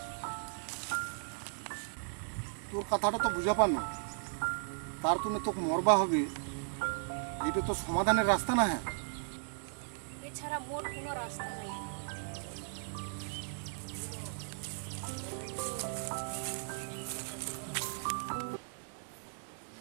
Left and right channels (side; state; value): left; silent; digital silence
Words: তোর কথাটা তো বুঝা পানো, তার তুমি তোকে মরবা হবে, এটা তো সমাধানের রাস্তা না। হ্যাঁ, এছাড়া মোর কোনো রাস্তা নাই।